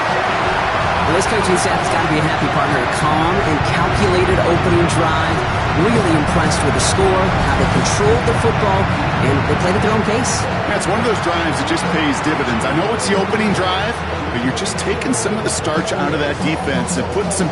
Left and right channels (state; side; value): identical; both; correlation 1.00